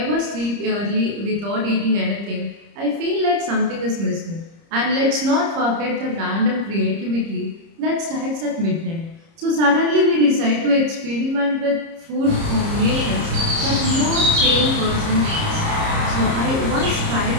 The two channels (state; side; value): late; left; 30 ms